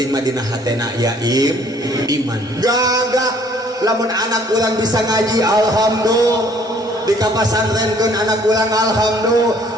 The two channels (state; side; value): normal; both; correlation 0.59